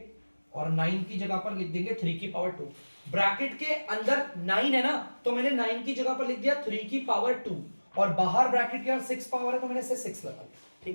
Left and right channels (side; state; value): both; inverted; correlation -1.00